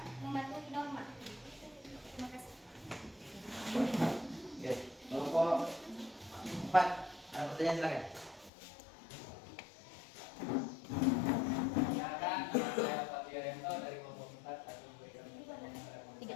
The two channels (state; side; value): drops out; right; at 8.5 s